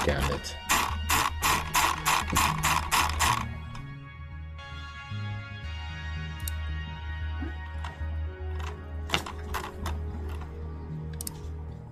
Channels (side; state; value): both; identical; correlation 1.00